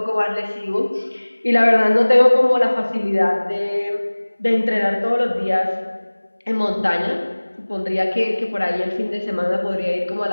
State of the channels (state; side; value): inverted; both; correlation -1.00